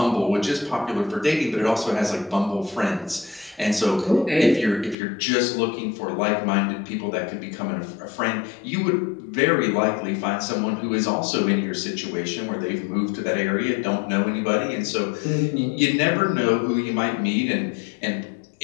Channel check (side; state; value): right; drops out; at 5.0 s